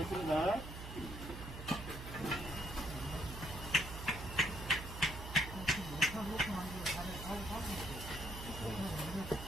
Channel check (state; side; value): noise; right; hum, 9 dB below the sound